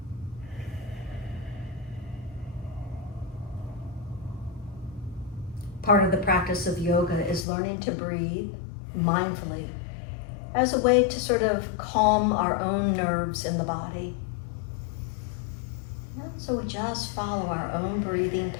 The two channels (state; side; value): drops out; right; at 7.5 s